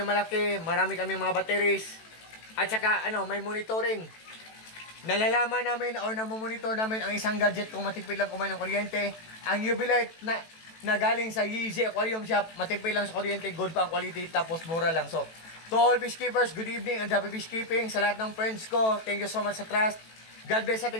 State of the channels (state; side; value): late; right; 18 ms